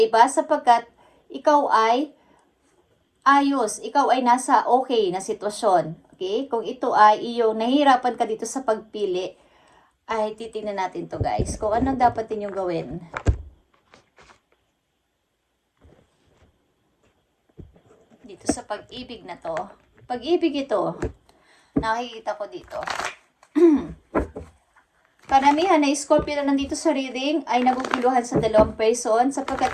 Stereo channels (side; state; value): both; identical; correlation 1.00